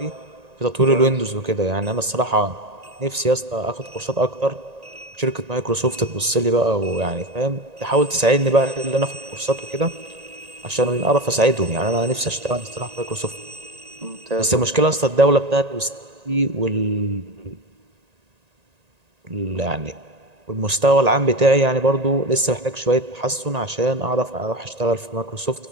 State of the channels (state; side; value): late; left; 1.9 ms